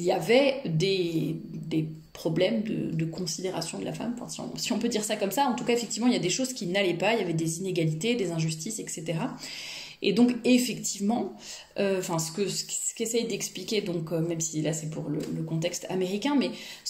avait des problèmes de considération de la femme, si on peut dire ça comme ça. En tout cas, effectivement, il y a des choses qui n'allaient pas, il y avait des inégalités, des injustices, etc. Et donc, effectivement, ce qu'essaye d'expliquer, donc même si là c'est pour le contexte américain, mais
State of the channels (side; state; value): both; identical; correlation 1.00